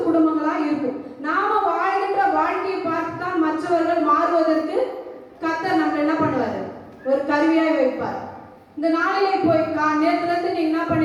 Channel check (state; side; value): identical; both; correlation 1.00